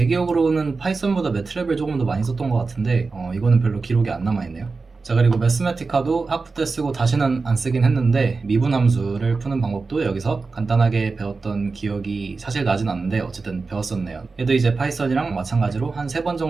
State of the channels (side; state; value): left; quieter; 4.2 dB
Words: 기억으로는 파이썬보다 매틀랩을 조금 더 많이 썼던 것 같은데 이거는 별로 기록이 안 남아있네요. 자 그리고 매스매티카도 학부 때 쓰고 다시는 안 쓰긴 했는데 미분 함수를 푸는 방법도 여기서 간단하게 배웠던 기억이 사실 나진 않는데 어쨌든 배웠었네요. 얘도 이제 파이썬이랑 마찬가지로 한 3번